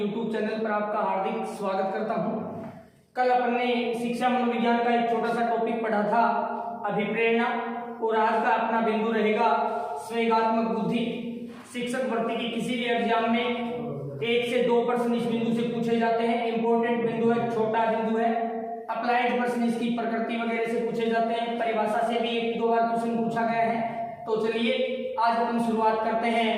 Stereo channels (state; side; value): identical; both; correlation 1.00